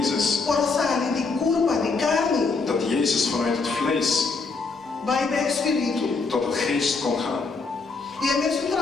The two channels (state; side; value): quieter; right; 4.3 dB